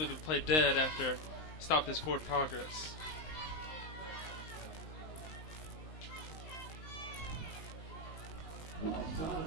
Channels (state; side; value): late; right; 19 ms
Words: the play dead after stopped his forward progress.